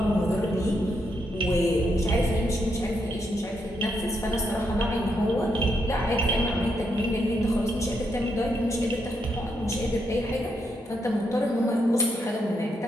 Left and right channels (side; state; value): both; normal; correlation 0.80